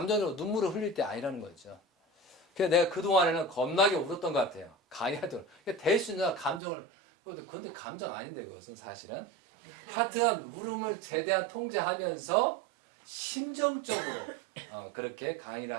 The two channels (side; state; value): left; drops out; at 6.6 s